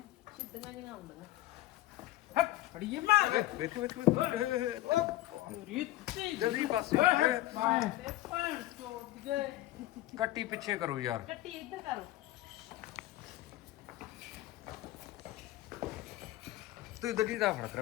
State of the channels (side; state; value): right; quieter; 15.9 dB